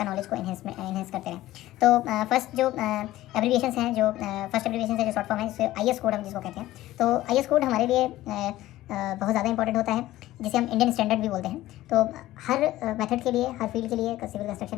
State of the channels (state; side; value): quieter; right; 15.6 dB